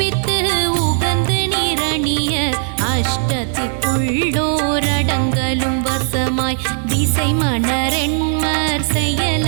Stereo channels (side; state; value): left; silent; digital silence